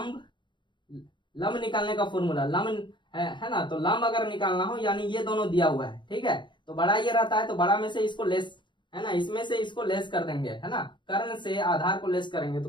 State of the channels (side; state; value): right; late; 0.23 ms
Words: निकालने का फॉर्मूला, लंब है ना, तो लंब अगर निकालना हो यानी ये दोनों दिया हुआ है, ठीक है। तो बड़ा ये रहता है, तो बड़ा में से इसको लेस, है ना, इसमें से इसको लेस कर देंगे, है ना, कर्ण से आधार को लेस करेंगे।